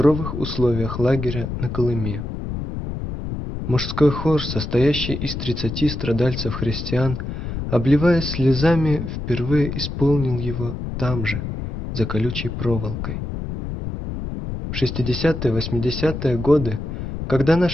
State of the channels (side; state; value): left; noise; rumble, 6 dB below the sound